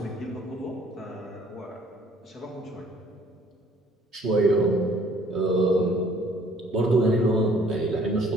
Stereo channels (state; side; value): normal; both; correlation 0.58